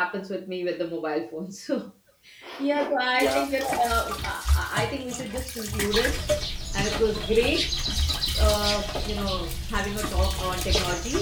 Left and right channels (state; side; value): identical; both; correlation 1.00